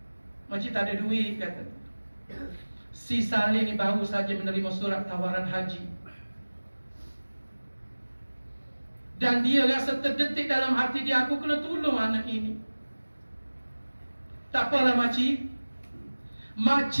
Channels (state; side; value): inverted; both; correlation -1.00